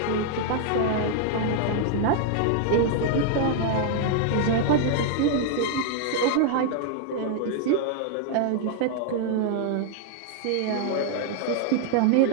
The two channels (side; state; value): both; different; correlation 0.00